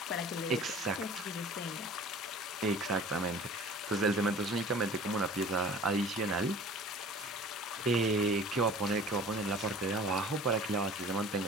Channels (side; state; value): both; normal; correlation 0.45